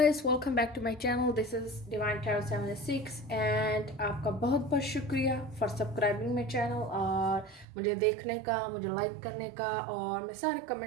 welcome back to my channel. This is Divine Tarot 76 and आपका बहुत बहुत शुक्रिया फॉर सब्सक्राइबिंग माय चैनल और मुझे देखने का, मुझे लाइक करने का। और मैं सारे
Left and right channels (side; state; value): left; drops out; at 7.7 s